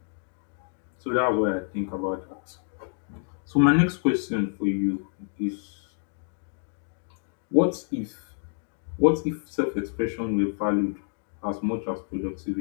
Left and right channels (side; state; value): right; silent; digital silence